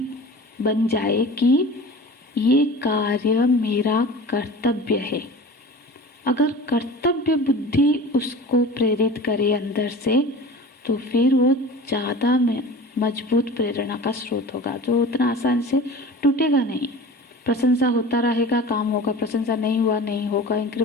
बन जाए कि ये कार्य मेरा कर्तव्य है, अगर कर्तव्य बुद्धि उसको प्रेरित करे अंदर से, तो फिर वो ज़्यादा मजबूत प्रेरणा का स्रोत होगा, जो उतना आसान से टूटेगा नहीं। प्रशंसा होता रहेगा, काम होगा, प्रशंसा नहीं हुआ नहीं होगा,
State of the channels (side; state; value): both; normal; correlation 0.37